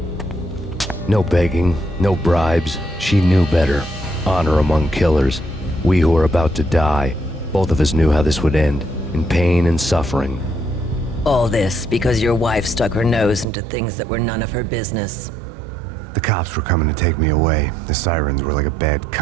No begging, no bribes. She knew better. Honor among killers. We who were about to die. Both of us knew how this would end, in pain and suffering. All this because your wife stuck her nose into things that were none of her business. The cops were coming to take me away. The sirens were like a bad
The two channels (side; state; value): left; drops out; at 13.5 s